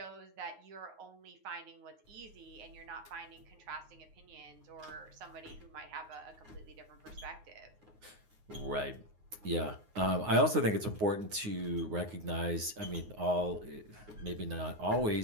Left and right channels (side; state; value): left; late; 9.6 ms